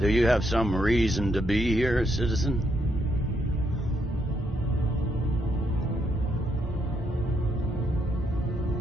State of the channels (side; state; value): both; normal; correlation 0.76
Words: you have some reason to be here, citizen?